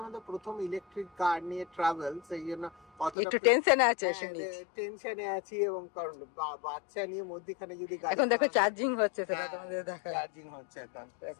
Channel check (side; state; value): right; drops out; at 3.2 s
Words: আমাদের প্রথম ইলেকট্রিক কার নিয়ে ট্রাভেল, সেই জন্য একটু টেনশনে আছে, টেনশনে আছি। এবং কারণ বাচ্চা নিয়ে মধ্যখানে যদি এখন দেখো চার্জিং হচ্ছে, সেটা তোমাদের দেখা, চার্জিং হচ্ছে এখন।